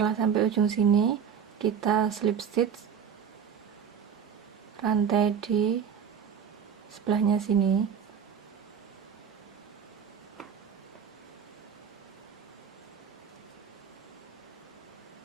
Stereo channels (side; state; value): left; quieter; 7.5 dB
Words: sampai ujung sini, kita slip stitch rantai di sebelahnya sini.